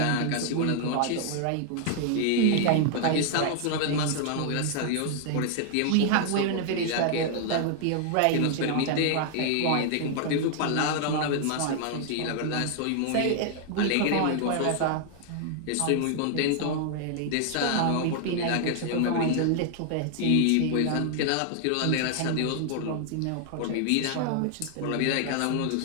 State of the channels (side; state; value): both; different; correlation 0.00